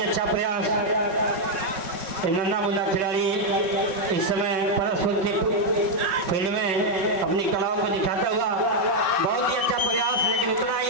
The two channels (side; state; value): left; late; 5.6 ms